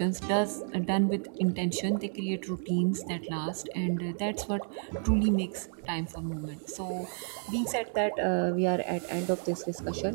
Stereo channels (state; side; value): silent; left; 57 dB below the other